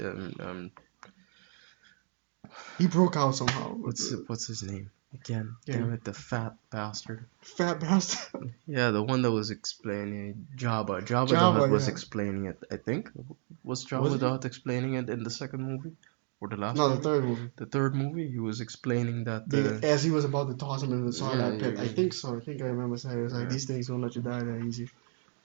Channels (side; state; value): left; silent; 56 dB below the other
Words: He broke out somehow. what's his name again? Yeah, Damn it, the fat bastard. fat bastard. Yeah, the one that was explaining Jabba. Jabba the Java, Hutt was yeah. explaining it. I think was Was Jabba he? the Hutt explaining it in the second movie or the last No, the movie? third movie. The third movie, he was explaining that. As he was about to toss him into the Yeah, Sarlacc pit. I think so. I think I remember saying it was like yeah, these things won't let you die that easy.